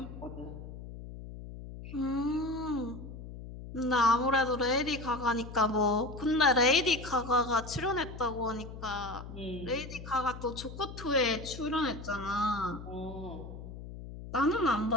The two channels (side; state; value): left; noise; hum, 12 dB below the sound